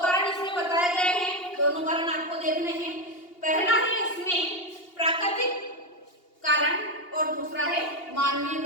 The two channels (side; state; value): right; late; 2.8 ms